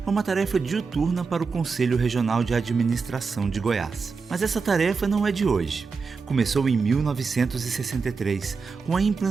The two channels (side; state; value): left; quieter; 4.9 dB